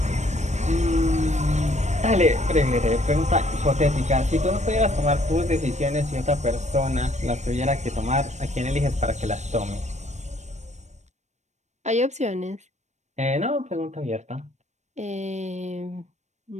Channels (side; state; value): left; late; 0.34 ms